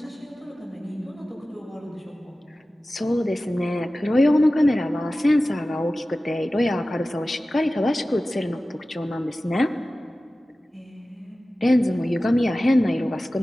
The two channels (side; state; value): both; normal; correlation 0.96